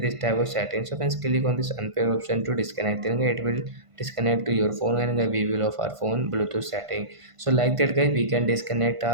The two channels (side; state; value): left; late; 1.5 ms